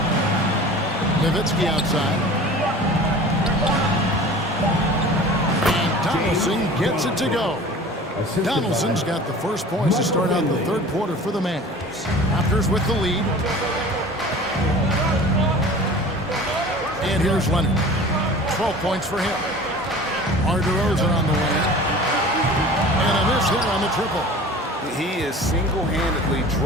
Nowitzki outside. And Donaldson gets it to go. Donaldson's got the first points to start out the third quarter for the Mavs. Raptors with the lead. And here's Leonard. 12 points for him. DeRozan on the wing. And a miss here on the triple. He is single-handedly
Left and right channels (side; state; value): both; normal; correlation 0.41